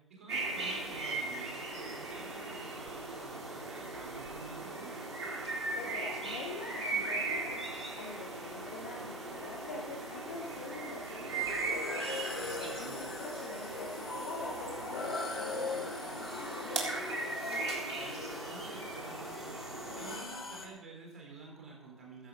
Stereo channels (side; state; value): both; normal; correlation 0.33